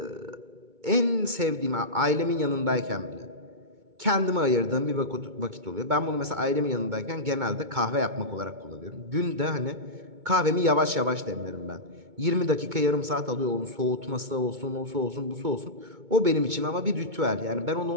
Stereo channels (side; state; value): left; late; 2.2 ms